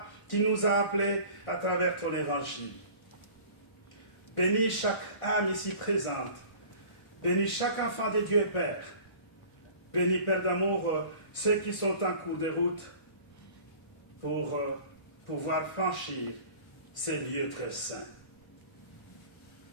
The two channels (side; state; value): right; late; 1.5 ms